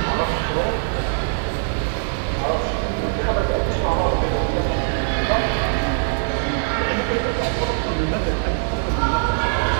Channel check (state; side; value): silent; left; digital silence